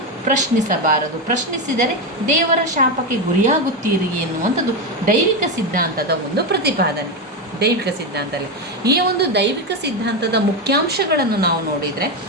ಪ್ರಶ್ನಿಸಬಾರದು. ಪ್ರಶ್ನಿಸಿದರೆ ದೇವರ ಶಾಪಕ್ಕೆ ಗುರಿಯಾಗುತ್ತೀರಿ ಎನ್ನುವಂಥದ್ದು ದೈವಿಕ ಸಿದ್ಧಾಂತದ ಒಂದು ಪ್ರತಿಪಾದನೆ. ದೈವಿಕ ಸಿದ್ಧಾಂತದಲ್ಲಿ ಈ ಒಂದು ದೈವಿಕ ಸಿದ್ಧಾಂತದ ಮುಖ್ಯಾಂಶಗಳನ್ನು ನಾವು ನೋಡಿದರೆ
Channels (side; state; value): both; normal; correlation 0.11